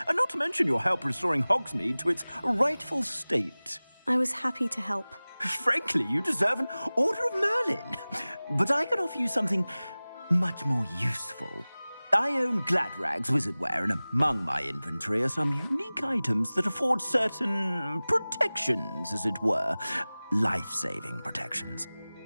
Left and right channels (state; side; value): inverted; both; correlation -0.99